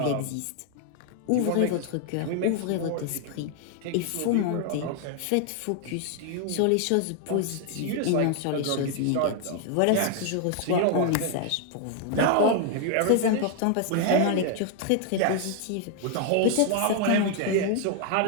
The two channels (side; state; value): both; different; correlation 0.00